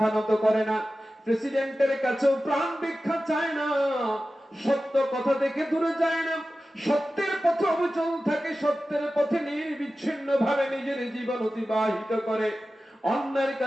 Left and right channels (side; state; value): both; normal; correlation 0.94